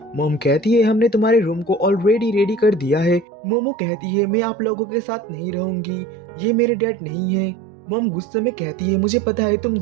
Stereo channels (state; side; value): drops out; left; at 3.2 s